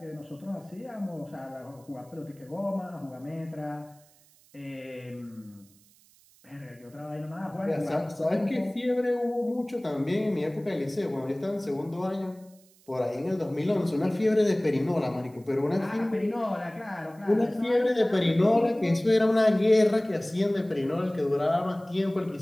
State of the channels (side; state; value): right; noise; hiss, 29 dB below the sound